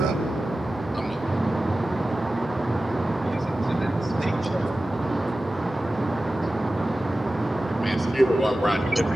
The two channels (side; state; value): both; normal; correlation 0.95